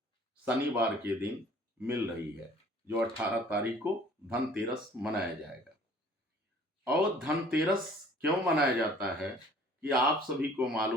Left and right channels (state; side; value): normal; both; correlation 0.53